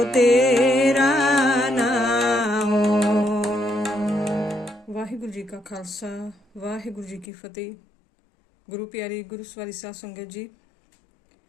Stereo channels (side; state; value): right; drops out; at 7.2 s